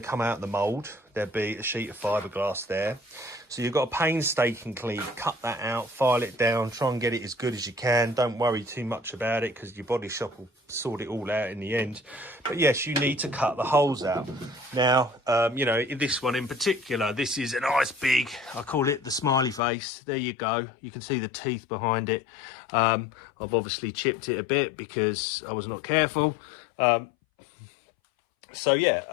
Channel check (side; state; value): right; drops out; at 19.6 s